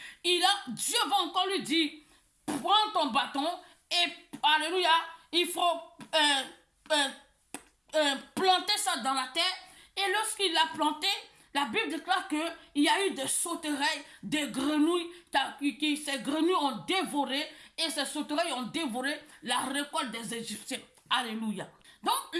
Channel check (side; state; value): both; identical; correlation 1.00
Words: Dieu va encore lui dire, prends ton bâton et, alléluia, il faut planter ça dans la terre. Et lorsqu'il l'a planté, la Bible déclare qu'il y a eu des sauterelles, des grenouilles, ces grenouilles ont dévoré, et ces sauterelles ont dévoré la récolte des Égyptiens. Alléluia. Donc